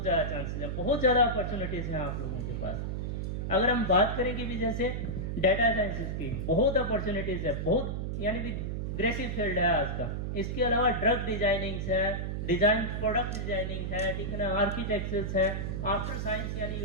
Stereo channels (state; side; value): noise; right; hum, 2 dB below the sound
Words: ज़्यादा चांसेस हैं, बहुत ज़्यादा अपॉर्चुनिटीज़ हैं आप लोगों के पास। अगर हम बात करें कि भी जैसे डाटा साइंसेज की बहुत अपॉर्चुनिटीज़ है, बहुत यानी भी ग्रेसिव फील्ड है आज का। इसके अलावा ड्रग डिजाइनिंग है, डिजाइन प्रोडक्ट डिजाइनिंग है, ठीक है ना, आर्किटेक्चर्स है, आफ्टर साइंस, यानी